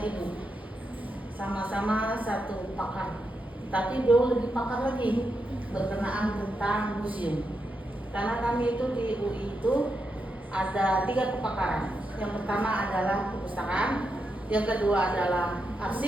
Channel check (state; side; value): normal; both; correlation 0.85